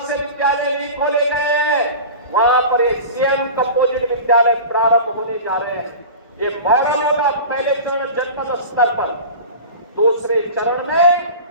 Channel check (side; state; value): both; inverted; correlation -0.34